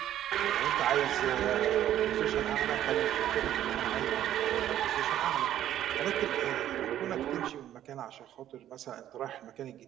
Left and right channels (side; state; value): left; quieter; 11.8 dB